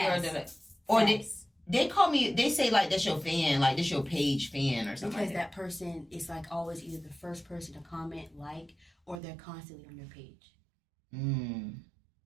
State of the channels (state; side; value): drops out; left; at 9.2 s